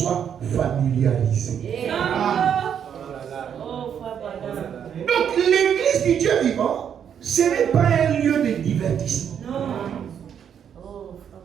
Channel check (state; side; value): quieter; left; 8.4 dB